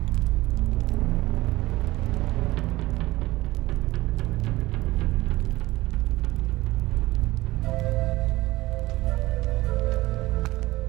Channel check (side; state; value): left; quieter; 18.6 dB